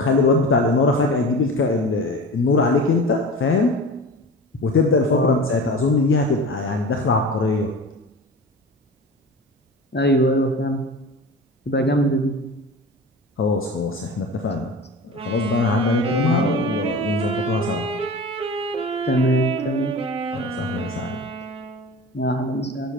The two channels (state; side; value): normal; both; correlation 0.34